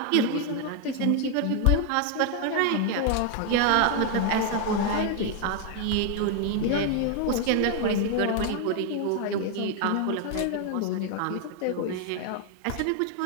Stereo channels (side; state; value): both; different; correlation 0.01